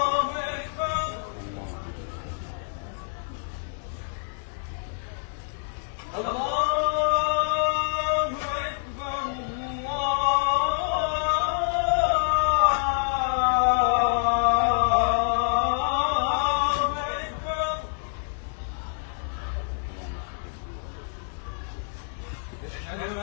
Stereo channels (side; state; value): right; silent; digital silence